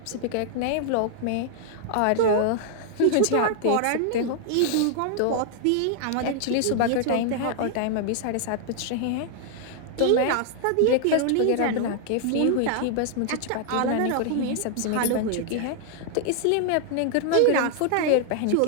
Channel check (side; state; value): both; different; correlation -0.01